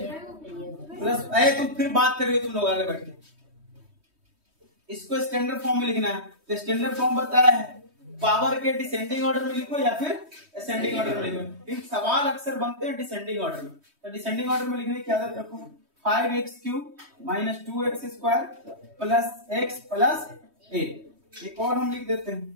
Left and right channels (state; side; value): late; left; 3.2 ms